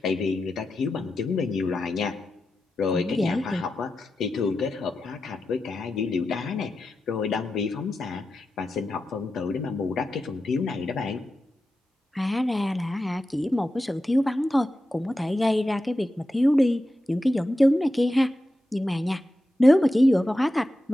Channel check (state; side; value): normal; both; correlation 0.91